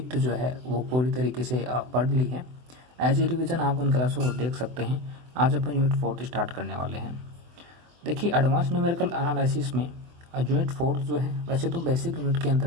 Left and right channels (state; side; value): late; left; 24 ms